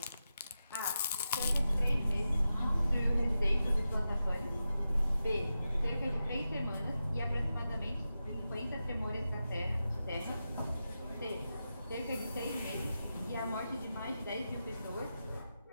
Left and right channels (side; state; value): both; inverted; correlation -0.91